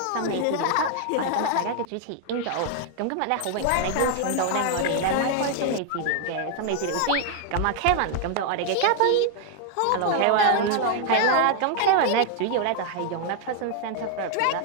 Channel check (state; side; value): different; both; correlation 0.00